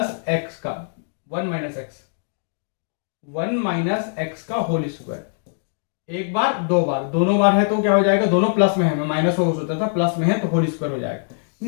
X का 1 माइनस एक्स, 1 माइनस एक्स का होल स्क्वायर। एक बार दो बार, दोनों बार है तो क्या हो जाएगा? दोनों प्लस में है, मैं माइनस हो सोचा था, प्लस में है तो होल स्क्वायर हो जाएगा।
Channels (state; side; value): silent; right; digital silence